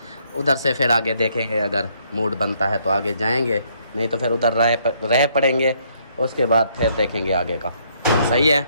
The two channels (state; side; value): inverted; both; correlation -0.69